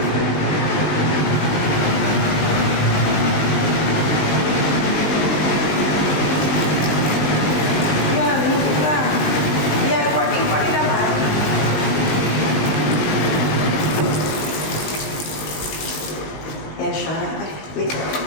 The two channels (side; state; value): right; late; 20 ms